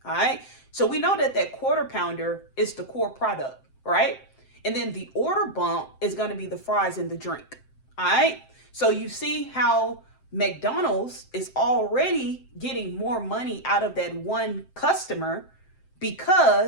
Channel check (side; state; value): right; late; 7.7 ms